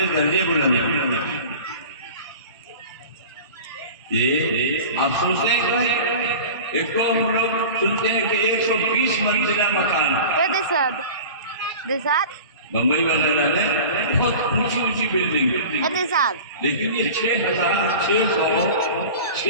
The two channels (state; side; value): inverted; both; correlation -0.37